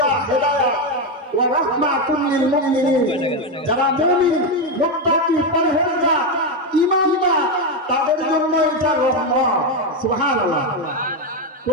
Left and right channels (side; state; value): both; normal; correlation 0.08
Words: হেদায়েত, ওয়া রাহমাতুল লিল মুমিনিন। যারা মুমিন, মুত্তাকি, পরহেজগার, ঈমানদার, তাদের জন্য এটা রহমত। সুবহানাল্লাহ।